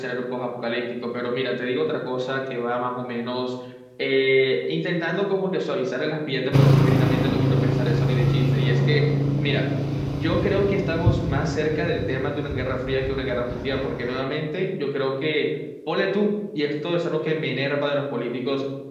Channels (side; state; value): both; identical; correlation 1.00